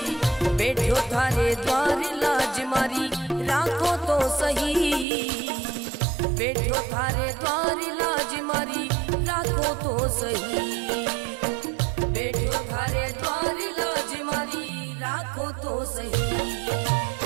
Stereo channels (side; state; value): left; drops out; at 5.1 s